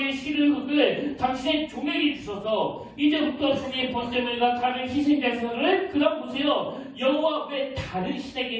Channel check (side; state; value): both; identical; correlation 1.00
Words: 실을 흙을 당신의 종에게 주셔서 이제부터 종의 번제물과 다른 희생제사를 그다음 보세요. 여호와 왜 다른